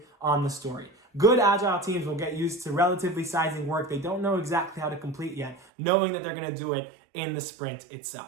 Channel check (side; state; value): left; drops out; at 5.7 s